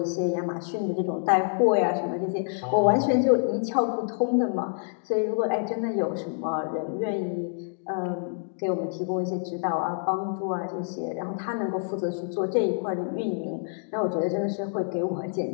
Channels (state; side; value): silent; right; digital silence